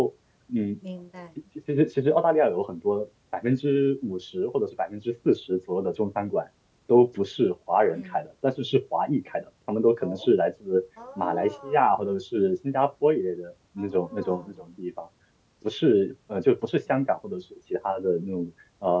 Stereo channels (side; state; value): both; identical; correlation 1.00